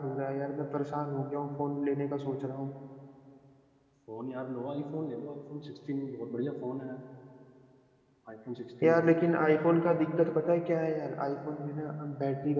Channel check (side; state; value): both; identical; correlation 1.00